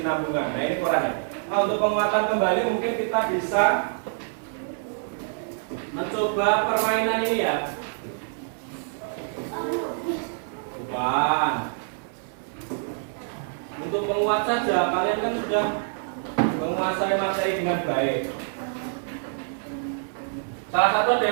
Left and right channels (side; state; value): left; silent; 61 dB below the other